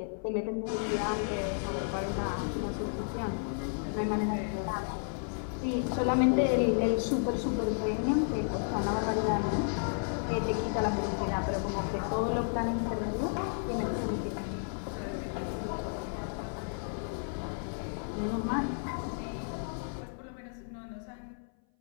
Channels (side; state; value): right; silent; 56 dB below the other